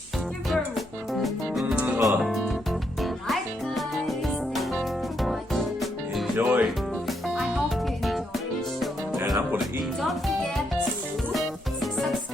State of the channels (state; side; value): normal; both; correlation 0.77